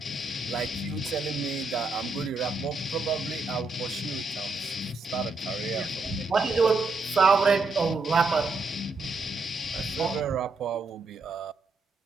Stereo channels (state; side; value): quieter; left; 3.4 dB